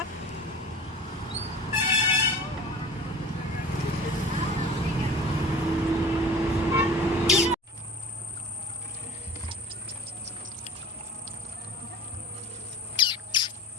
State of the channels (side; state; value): both; normal; correlation 0.39